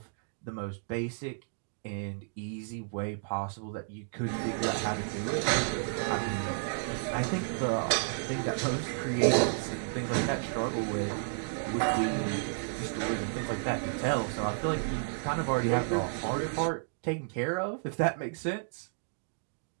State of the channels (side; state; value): left; silent; digital silence